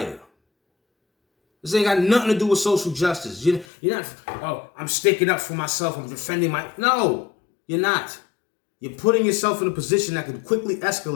This ain't got nothing to do with social justice. You're not, oh, I'm sticking up for myself. I'm defending my... No, you're not. You're putting yourself in a position that can quickly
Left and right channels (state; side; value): drops out; right; at 3.7 s